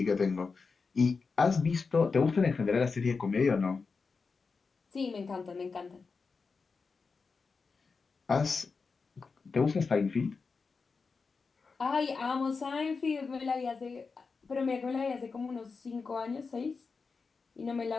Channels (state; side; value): quieter; right; 4.7 dB